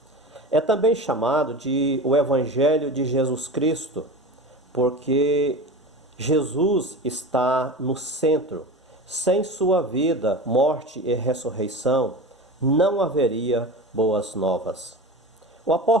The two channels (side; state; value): both; normal; correlation 0.31